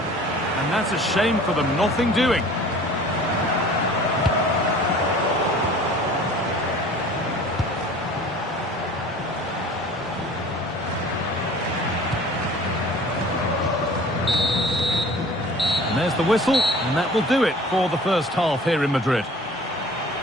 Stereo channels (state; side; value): normal; both; correlation 0.46